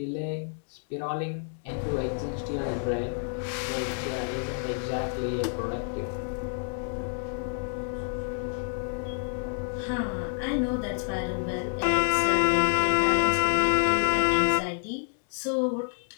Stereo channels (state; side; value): silent; right; 55 dB below the other